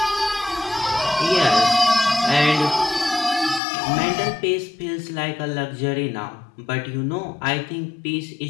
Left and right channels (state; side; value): drops out; right; at 3.6 s